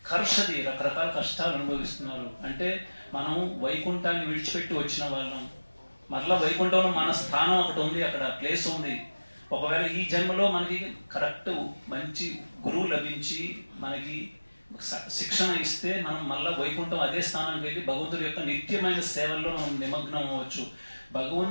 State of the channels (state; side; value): inverted; both; correlation -1.00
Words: కర్షది రకరకాల కష్టాలు అనుభవిస్తున్నారు. అంటే మనం వైకుంఠాన్ని విడిచిపెట్టి వచ్చిన వాళ్ళం. మరలా వైకుంఠంలో మన స్థానం ఒకటి ఉంది, అక్కడ ప్లేస్ ఉంది. ఒకవేళ ఈ జన్మలో మనకి కరెక్ట్ మంచి గురువు లభించి మనకి శిక్షణ ఇస్తే మనం మళ్ళా వైకుంఠం అదే స్థానానికి వెళ్ళి భగవంతుడి యొక్క నిత్యమైన సేవల్లో మనం నిమగ్నం అవ్వచ్చు.